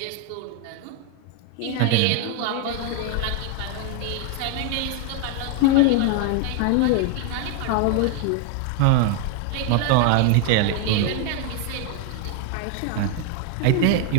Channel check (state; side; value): different; both; correlation 0.01